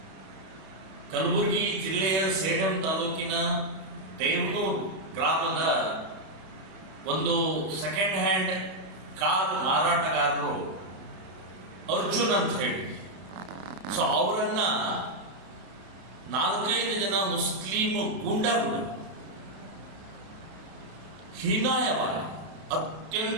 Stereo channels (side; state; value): left; late; 32 ms